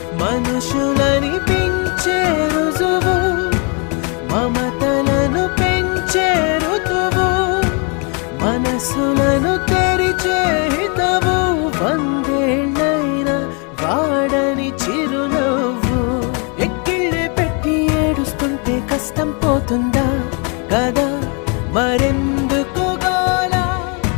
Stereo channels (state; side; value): quieter; right; 35.1 dB